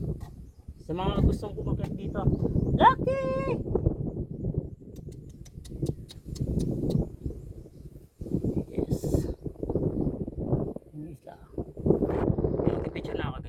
Sa mga gustong kumakit dito, Lucky! Yes. Yung isla. Yung picture na ako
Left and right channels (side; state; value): both; identical; correlation 1.00